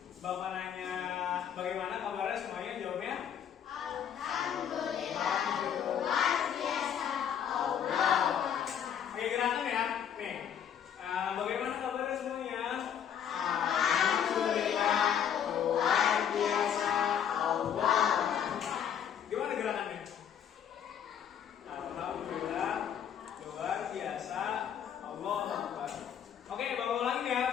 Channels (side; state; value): right; quieter; 8.8 dB